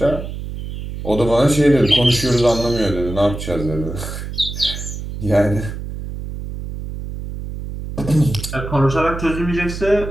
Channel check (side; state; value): right; noise; hum, 8 dB below the sound